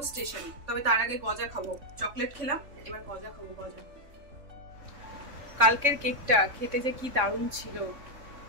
স্টেশনে। তবে তার আগে গজা খাবো, চকলেট খেলাম, এবার গজা খাবো। গজা কালকের কেকটা খেতে যে কি দারুণ ছিল।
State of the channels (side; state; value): left; late; 3.6 ms